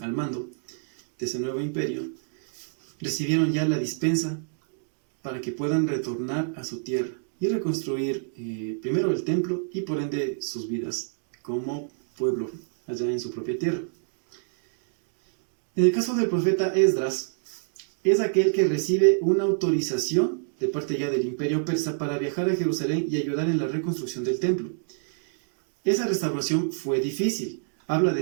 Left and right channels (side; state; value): left; silent; digital silence